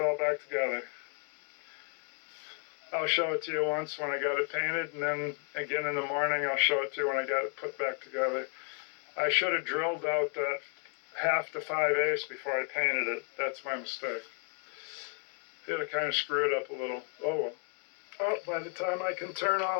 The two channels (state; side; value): quieter; right; 38.8 dB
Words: back together. I'll show it to you once when I got it painted, and then again in the morning I'll show it to you when I got it put back together. I should have drilled out that 1/2 to 5/8 before I painted it. That's my mistake. Yeah, I kind of screwed up a little. Oh well. Oh, by the time I can turn